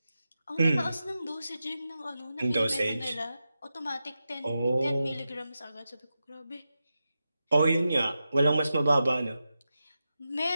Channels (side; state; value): both; inverted; correlation -0.90